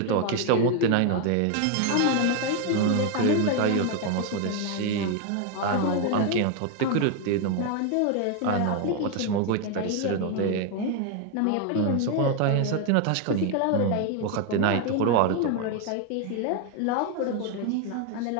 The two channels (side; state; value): both; different; correlation 0.01